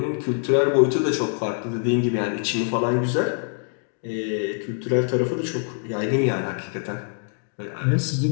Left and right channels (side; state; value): right; silent; 57 dB below the other